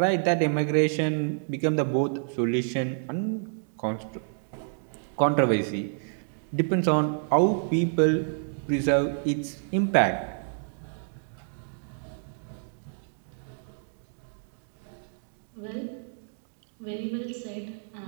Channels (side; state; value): left; silent; digital silence